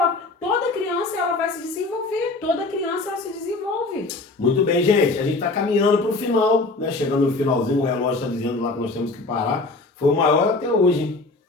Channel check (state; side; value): quieter; right; 3.3 dB